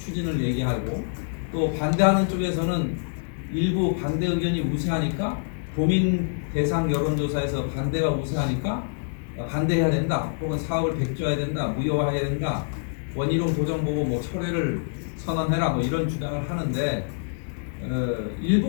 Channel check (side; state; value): right; silent; digital silence